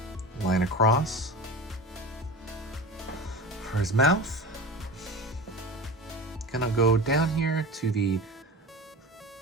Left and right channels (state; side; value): normal; both; correlation 0.31